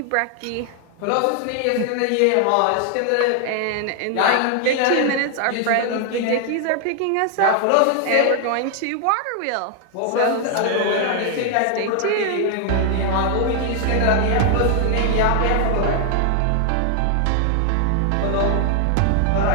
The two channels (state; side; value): different; both; correlation 0.00